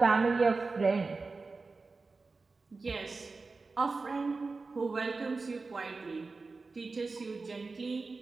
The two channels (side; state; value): left; quieter; 3.9 dB